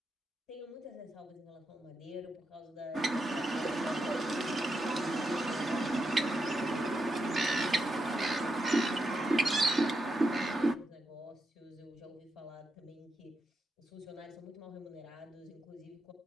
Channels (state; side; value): normal; both; correlation 0.83